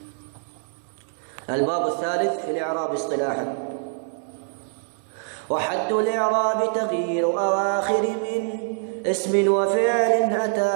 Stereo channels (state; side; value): silent; left; 60 dB below the other